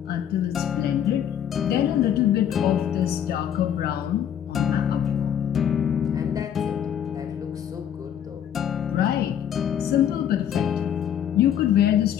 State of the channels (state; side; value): quieter; right; 9.5 dB